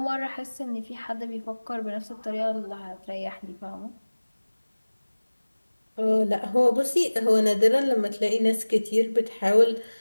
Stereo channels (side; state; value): both; inverted; correlation -1.00